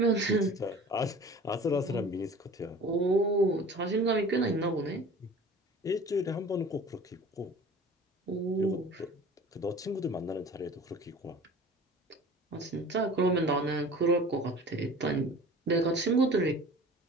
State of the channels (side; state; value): both; normal; correlation 0.43